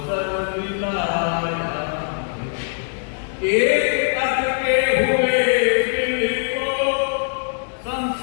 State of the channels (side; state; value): right; silent; digital silence